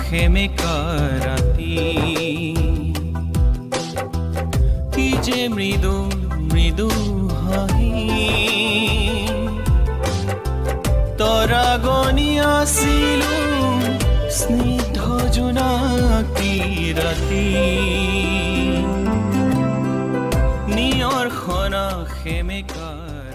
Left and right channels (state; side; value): identical; both; correlation 1.00